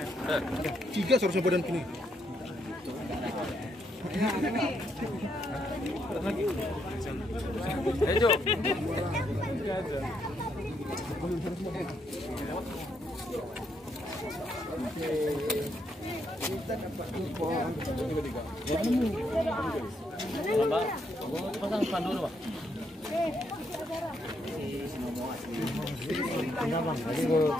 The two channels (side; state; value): both; normal; correlation 0.76